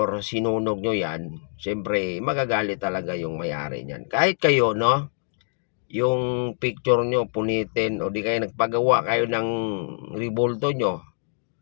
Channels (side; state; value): right; silent; 62 dB below the other